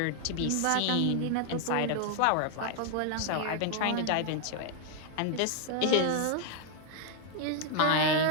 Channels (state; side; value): different; both; correlation 0.00